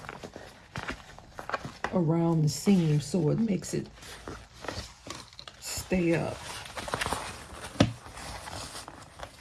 around the seam so it makes it stay up.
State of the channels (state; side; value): identical; both; correlation 1.00